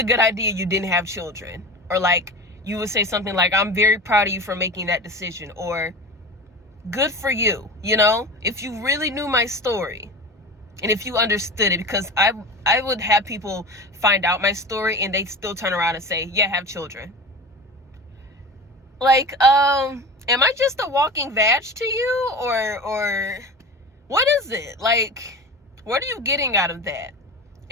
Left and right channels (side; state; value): both; normal; correlation 0.31